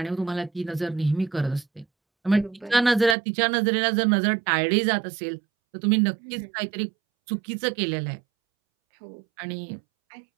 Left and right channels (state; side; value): drops out; left; at 3.2 s